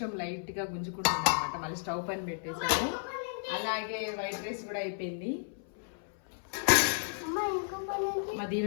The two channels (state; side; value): silent; right; 56 dB below the other